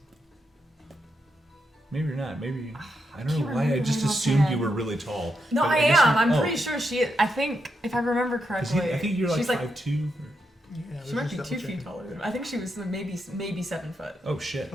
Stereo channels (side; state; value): both; normal; correlation 0.83